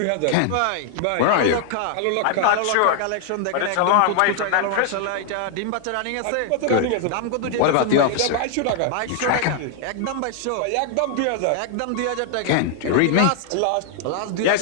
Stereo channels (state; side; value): different; both; correlation 0.00